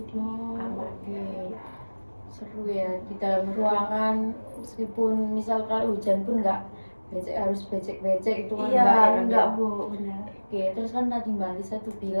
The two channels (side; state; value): both; inverted; correlation -1.00